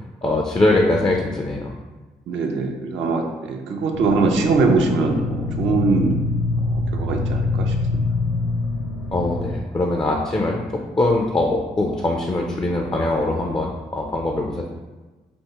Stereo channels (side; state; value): both; normal; correlation 0.67